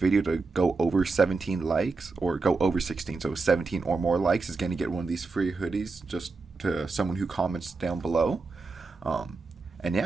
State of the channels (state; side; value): quieter; left; 4.0 dB